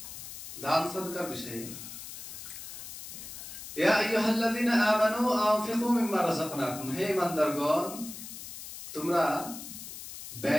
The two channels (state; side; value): noise; left; hiss, 11 dB below the sound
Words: দান সাদকার বিষয়ে। ইয়া আইয়ুহাল্লাযীনা আমানু আনফিকু মিম্মা রাযাকনাকুম, হে ঈমানদারগণ তোমরা